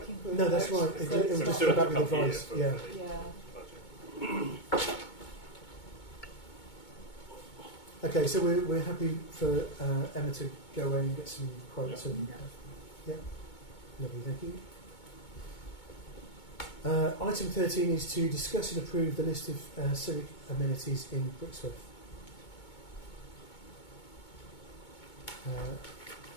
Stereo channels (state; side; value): late; right; 2.2 ms